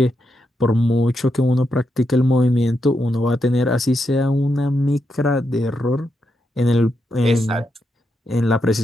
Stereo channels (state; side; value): normal; both; correlation 0.83